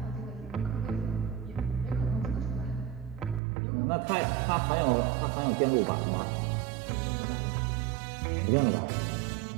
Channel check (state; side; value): drops out; left; at 3.4 s